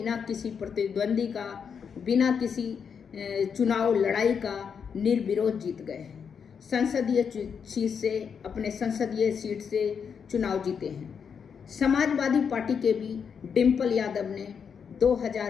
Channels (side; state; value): right; quieter; 6.7 dB